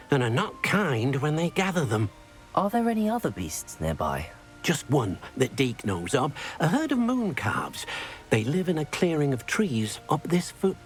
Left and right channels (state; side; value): identical; both; correlation 1.00